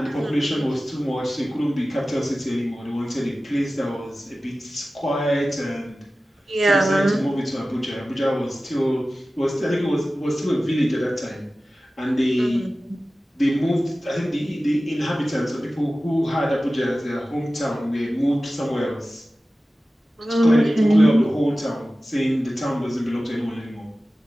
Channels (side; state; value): both; normal; correlation 0.96